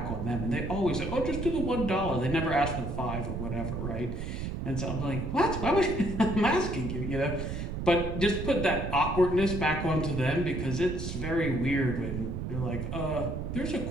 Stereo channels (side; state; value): right; noise; rumble, 4 dB below the sound